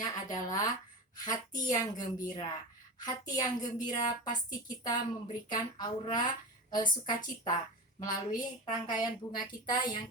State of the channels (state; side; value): normal; both; correlation 0.25